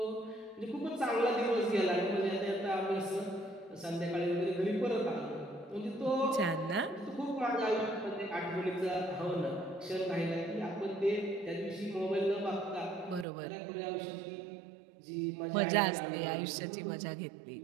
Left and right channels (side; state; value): left; drops out; at 13.2 s